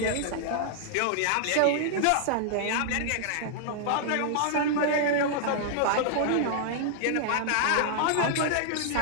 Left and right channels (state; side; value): different; both; correlation -0.01